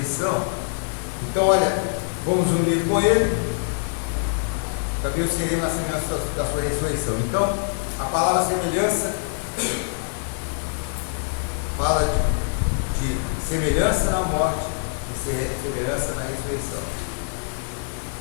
Então, olha, fomos unidos com Ele, também o seremos na semelhança da sua ressurreição. Então, a palavra semelhança fala de semelhança na morte e semelhança na ressurreição.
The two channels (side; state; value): right; silent; digital silence